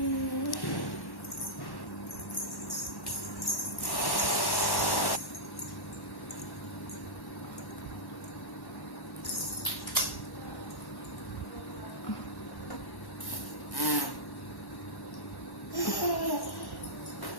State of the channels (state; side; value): late; right; 1.1 ms